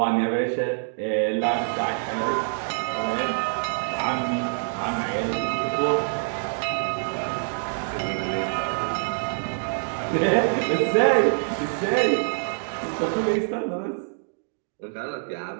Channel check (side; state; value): left; silent; digital silence